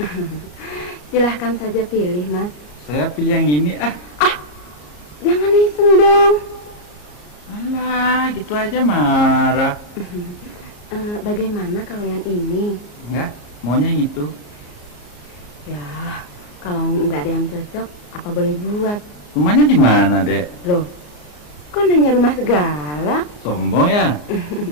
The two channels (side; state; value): right; late; 34 ms